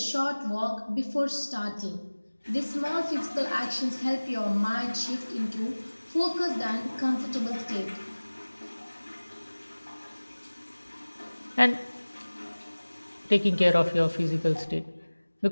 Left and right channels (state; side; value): inverted; both; correlation -1.00